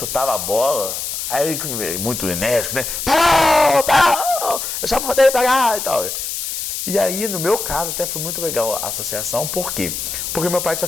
a bola, aí ele, muito enérgico, né? Parou! Eu já mandei pegar e tal. E aí, no meu caso, até foi muito legal a associação. Por quê? Porque meu pai tinha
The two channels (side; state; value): left; noise; hiss, 4 dB below the sound